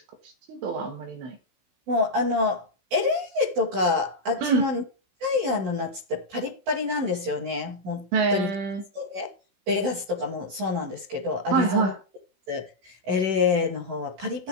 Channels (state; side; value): late; left; 16 ms